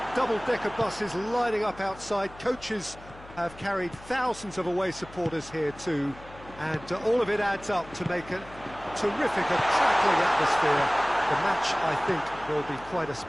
double-decker buses lining up outside. Coaches have carried thousands of away supporters here too, and all of it adds up to make a terrific, a crackling atmosphere. The match, I think, will be quite a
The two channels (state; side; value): noise; left; hum, 19 dB below the sound